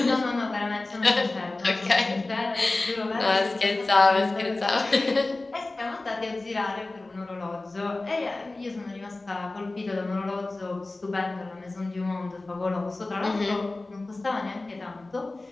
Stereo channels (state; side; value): quieter; right; 3.1 dB